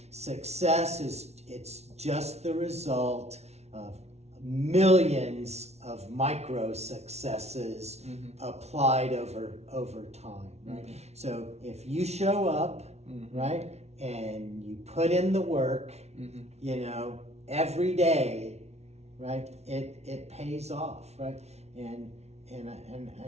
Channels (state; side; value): late; left; 0.31 ms